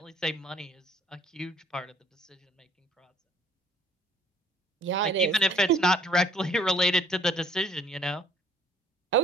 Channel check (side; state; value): both; normal; correlation 0.58